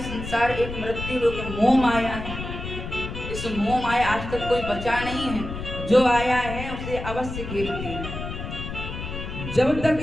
संसार एक मृत्यु लोक है, मोह माया है। इस मोह माया आज तक कोई बचा नहीं है, जो आया है उसे अवश्य घेरती है। जब तक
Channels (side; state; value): left; noise; rumble, 7 dB below the sound